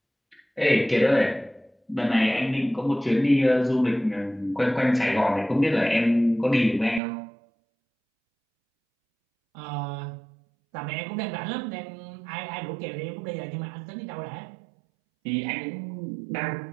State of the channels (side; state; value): left; drops out; at 7.0 s